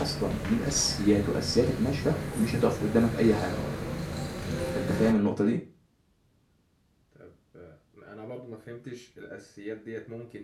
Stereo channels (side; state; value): both; identical; correlation 1.00